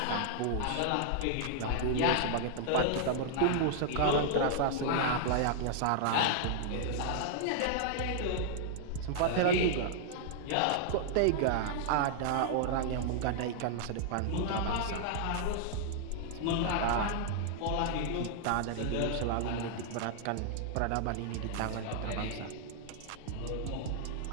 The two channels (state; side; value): different; both; correlation -0.01